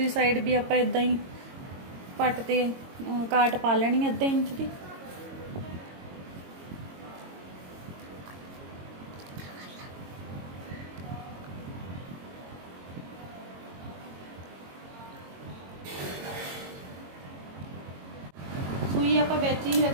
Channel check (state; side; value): late; left; 22 ms